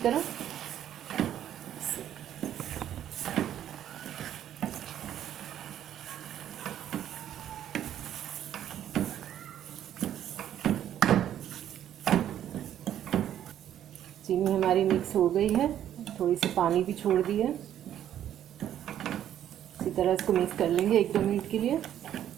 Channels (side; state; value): left; quieter; 10.9 dB